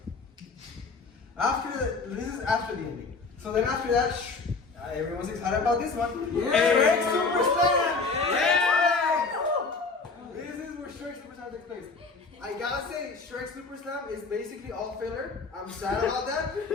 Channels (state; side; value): quieter; right; 4.2 dB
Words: This is after the ending. So then after that, everyone's excited about this one. Shrek Super Slam! This is where Shrek Super Slam takes place. I gotta say, Shrek Super Slam is basically all filler. I'm sad about that.